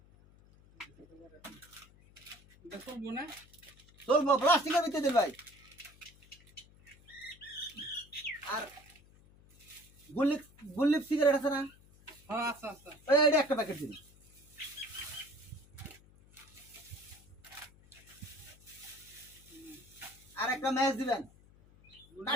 চলবো না? চলবো, প্লাস্টিকের ভিতরে দেন ভাই। আর গুল্লিপ সিগারেট আছে না? হ্যাঁ আচ্ছা আচ্ছা। এটা একটা প্যাকেট দিন। আর একটা ম্যাচ দিবেন,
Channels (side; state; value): left; noise; hum, 25 dB below the sound